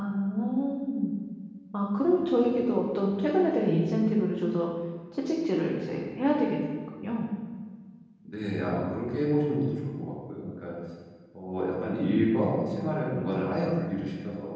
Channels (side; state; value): both; identical; correlation 1.00